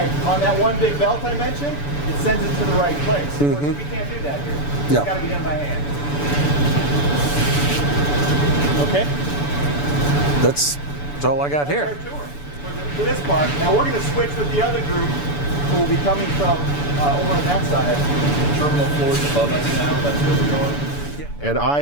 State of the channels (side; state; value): right; late; 6.9 ms